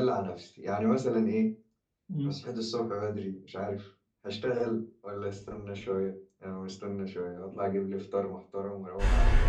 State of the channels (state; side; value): identical; both; correlation 1.00